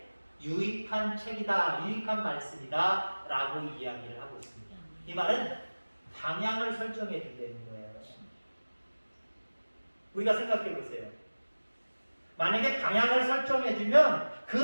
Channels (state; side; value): inverted; both; correlation -1.00